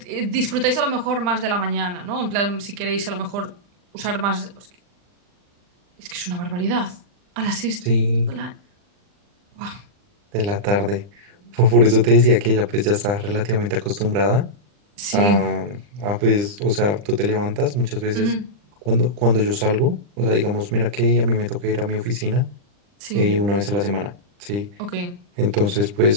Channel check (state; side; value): late; left; 39 ms